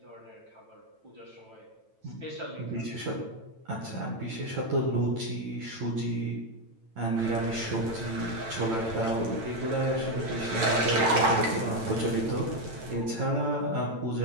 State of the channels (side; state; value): left; late; 9.0 ms